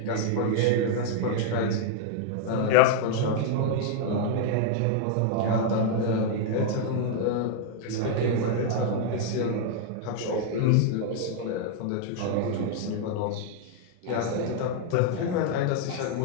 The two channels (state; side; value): different; both; correlation 0.00